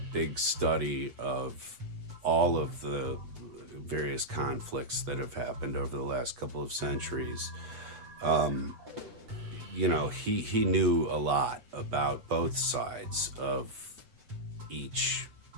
study of all of the various conflicts that have happened over the last couple of centuries, he knew a lot about both sides of each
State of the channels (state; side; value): late; left; 8.1 ms